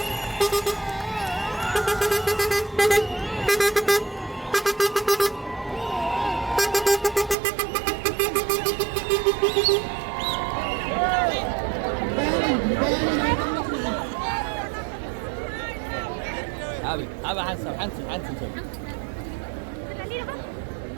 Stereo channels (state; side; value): drops out; left; at 7.4 s